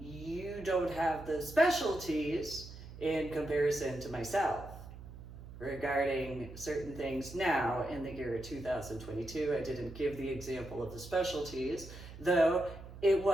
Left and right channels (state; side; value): noise; right; hum, 14 dB below the sound